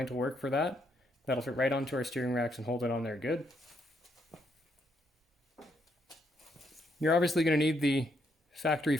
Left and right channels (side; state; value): both; normal; correlation 0.75